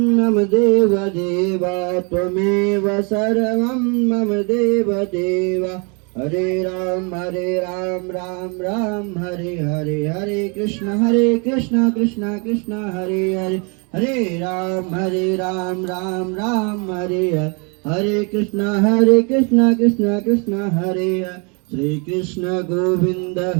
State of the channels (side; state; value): left; quieter; 34.2 dB